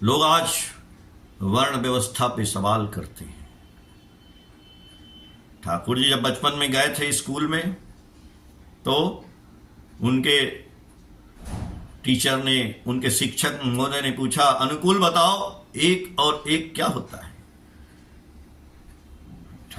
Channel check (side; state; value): both; identical; correlation 1.00